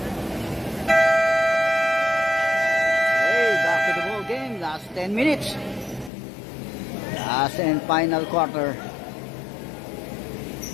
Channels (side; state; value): right; drops out; at 6.1 s